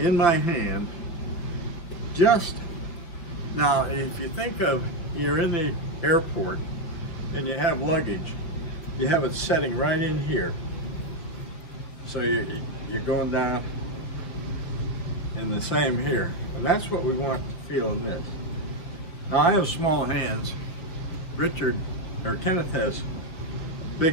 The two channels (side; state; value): right; late; 5.5 ms